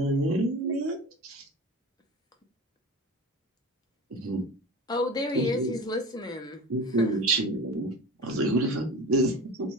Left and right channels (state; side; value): normal; both; correlation 0.34